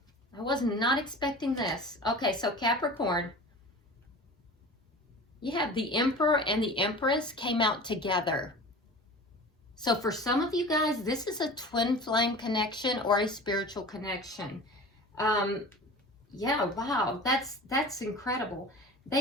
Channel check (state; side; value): normal; both; correlation 0.37